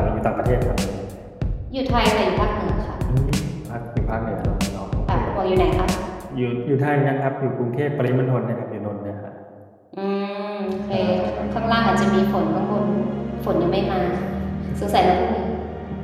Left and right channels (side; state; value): both; identical; correlation 1.00